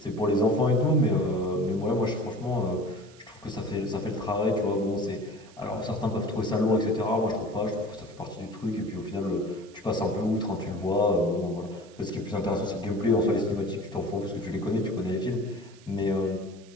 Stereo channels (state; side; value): noise; right; hiss, 25 dB below the sound